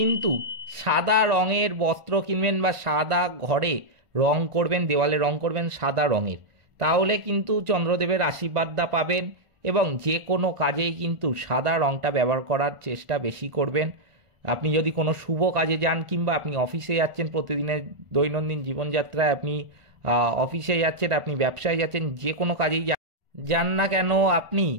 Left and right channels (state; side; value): late; left; 1.5 ms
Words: সাদা রঙের বস্ত্র কিনবেন বা সাদা ঘরে রং করবেন, দেওয়ালে রং করবেন সাদা রঙের, তাহলে কিন্তু চন্দ্রদেবের আশীর্বাদটা পাবেন এবং যে কোনো কাজেই কিন্তু সাদা রঙটা ব্যবহার করার চেষ্টা বেশি করবেন। আপনি যদি কোনো শুভ কাজে যান কিংবা আপনি অফিসে যাচ্ছেন, প্রতিদিনের দৈনন্দিন জীবনযাত্রায় আপনি অফিসে যাচ্ছেন, আপনি ব্যবসায় যাচ্ছেন, যে কোনো কাজেই যান না কেন আপনি